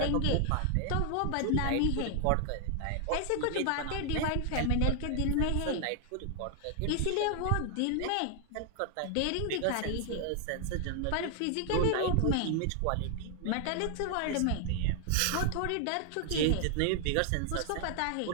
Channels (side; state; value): both; different; correlation 0.00